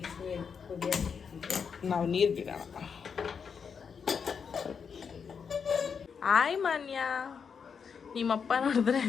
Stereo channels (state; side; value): quieter; right; 6.4 dB